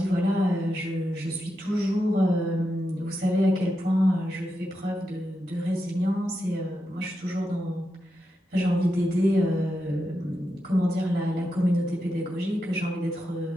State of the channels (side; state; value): both; normal; correlation 0.87